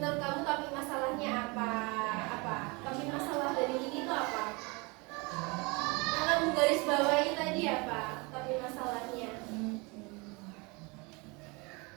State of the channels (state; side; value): quieter; left; 27.8 dB